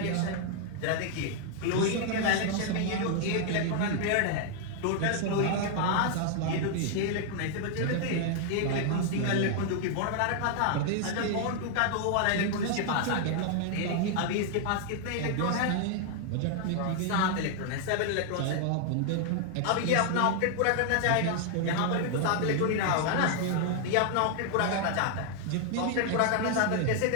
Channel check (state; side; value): different; both; correlation 0.00